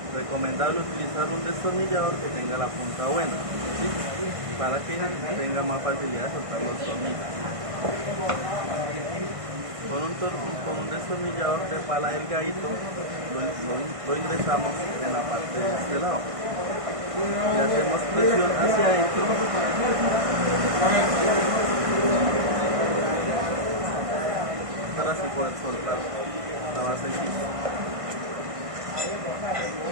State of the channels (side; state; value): left; late; 1.5 ms